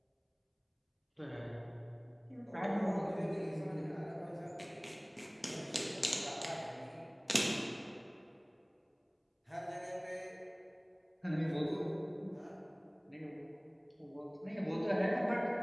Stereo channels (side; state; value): both; identical; correlation 1.00